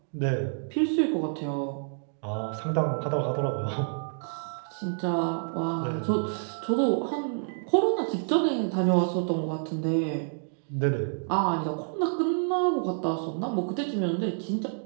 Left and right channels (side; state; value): left; silent; digital silence